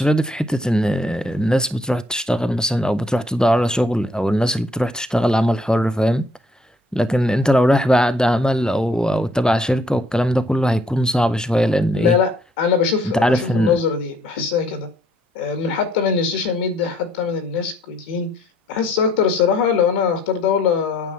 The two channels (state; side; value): normal; both; correlation 0.65